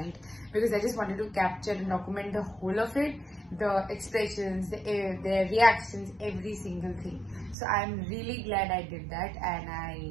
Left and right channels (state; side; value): drops out; left; at 7.6 s